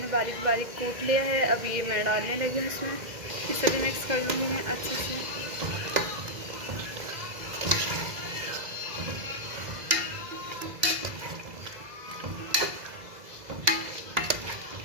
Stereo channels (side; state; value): left; late; 2.0 ms